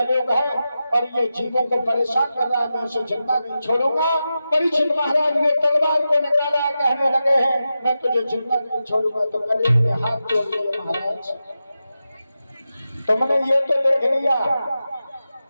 है और ये जीवों को परेशान कर रहा है, मैं उसे जिंदा नहीं छोड़ूंगा, परीक्षित महाराज ने तलवार को निकाला, कहने लगे हैं मैं तुझे जिंदा नहीं छोड़ूंगा। तो कलियुग ने हाथ जोड़ दिए, महाराज तुमने ये तो देख लिया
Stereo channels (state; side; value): inverted; both; correlation -0.91